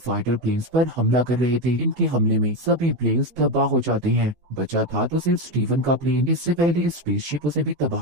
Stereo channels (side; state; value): left; late; 15 ms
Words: प्लेन्स पर हमला कर रहे थे। इनके हमले में सभी प्लेन्स तबाह हो जाते हैं। बचा था तो सिर्फ स्टीवन का प्लेन। इससे पहले स्पेसशिप उसे भी